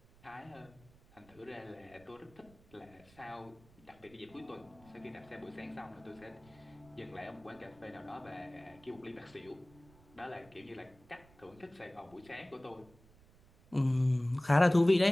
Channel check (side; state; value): right; noise; rumble, 26 dB below the sound